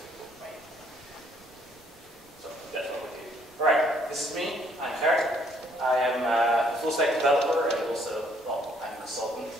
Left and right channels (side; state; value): both; normal; correlation 0.66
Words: So, that's what we do. Alright, this is me, I'm Gert. I am a full-stack developer and also, well, I'm a consultant